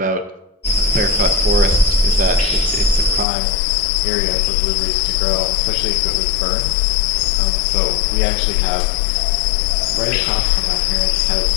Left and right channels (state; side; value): drops out; right; at 3.2 s